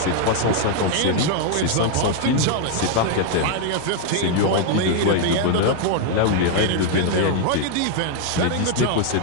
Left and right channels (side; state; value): both; different; correlation 0.00